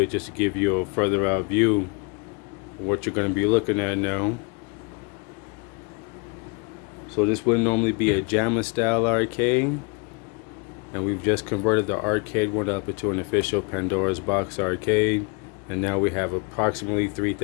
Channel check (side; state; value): right; quieter; 32.6 dB